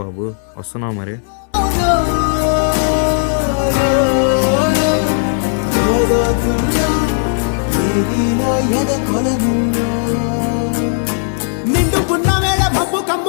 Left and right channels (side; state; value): right; silent; digital silence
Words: బాబు, వస్తున్నావు మరి. నిండు పున్నమేళ మబ్బు